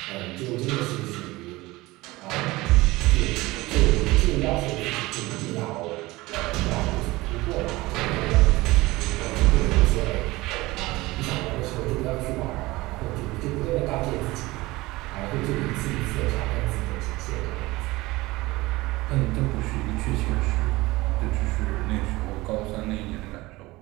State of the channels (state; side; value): quieter; left; 20.3 dB